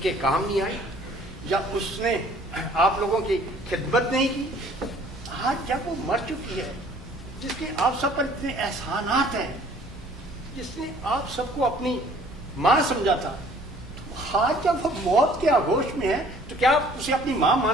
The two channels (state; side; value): normal; both; correlation 0.55